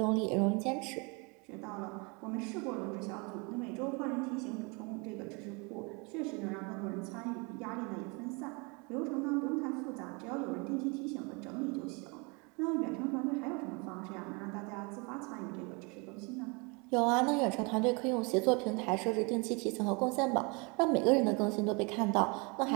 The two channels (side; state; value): left; quieter; 30.4 dB